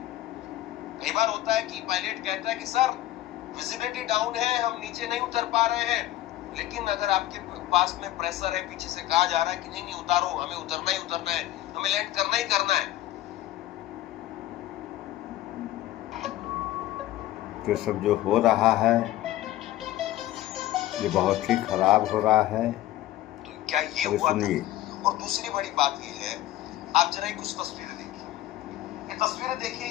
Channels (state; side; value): quieter; right; 14.8 dB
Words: कई बार होता है कि पायलट कहता है कि सर विजिबिलिटी डाउन है, हम नीचे नहीं उतर पा रहे हैं, लेकिन अगर आपके पास में प्रेशर है, पीछे से कहा जा रहा है कि नहीं नहीं उतारो, हमें उतरना ही उतरना है, हमें लैंड करना ही करना है। तो सब जो हो रहा है ये बहुत ही खराब हो रहा है। तो क्या ये हुआ था? और दूसरी बड़ी बात ये है, आप जरा कुछ तस्वीरें देखिए, ये तस्वीरें देखिए,